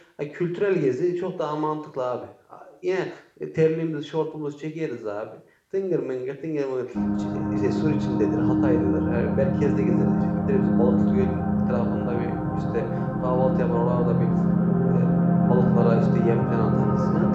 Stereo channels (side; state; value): both; identical; correlation 1.00